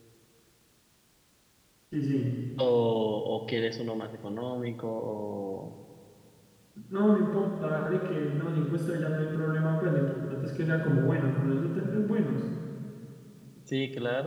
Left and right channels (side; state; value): both; identical; correlation 1.00